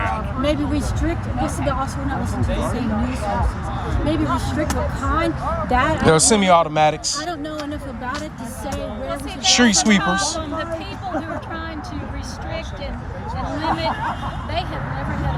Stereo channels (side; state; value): both; identical; correlation 1.00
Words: Maybe restrict. This is also we're not listening to the same news sources. Maybe restrict what kind. That There are semi-automatics. I don't know enough about it to say where we should Street That's the sweepers. problem. The people who are trying to restrict and limit, they have never had a